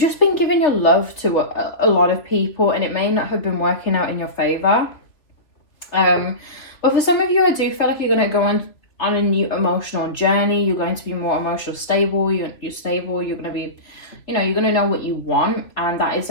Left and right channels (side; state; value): right; late; 3.3 ms